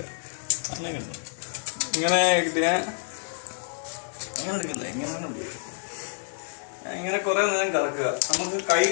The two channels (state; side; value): silent; right; digital silence